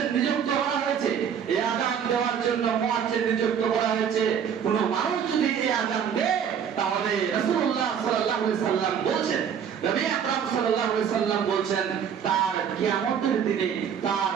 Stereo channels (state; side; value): quieter; left; 7.9 dB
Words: নিযুক্ত করা হয়েছে। এই আযান দেওয়ার জন্য মুয়াজ্জিন নিযুক্ত করা হয়েছে। কোন মানুষ যদি এই আযান দেয় তাহলে রাসূলুল্লাহ সাল্লাল্লাহু আলাইহি সাল্লাম বলছেন, নবী আকরাম সাল্লাল্লাহু আলাইহি সাল্লাম বলছেন, তার কিয়ামতের দিনে তার